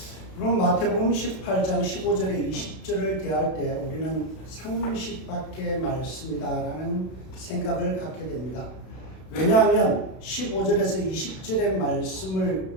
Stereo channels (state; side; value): late; right; 32 ms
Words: 그럼 마태복음 18장 15절에 20절을 대할 때 우리는 상식밖의 말씀이다라는 생각을 갖게 됩니다. 왜냐하면 15절에서 20절의 말씀의